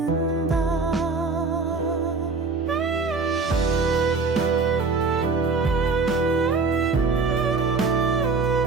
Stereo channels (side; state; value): left; quieter; 4.2 dB